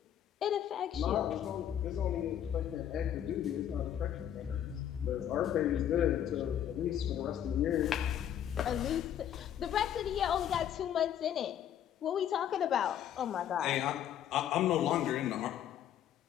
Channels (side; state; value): right; quieter; 10.2 dB